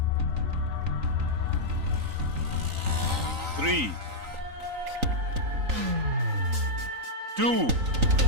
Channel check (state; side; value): late; left; 3.9 ms